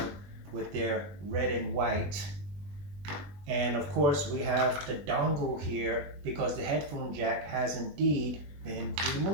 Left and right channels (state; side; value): late; left; 20 ms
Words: with their red and white. And of course, we have the dongle here because the headphone jack has indeed been